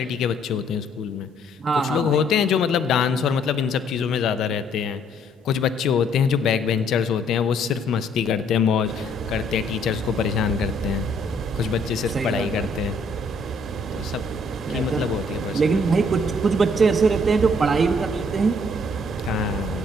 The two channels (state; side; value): normal; both; correlation 0.65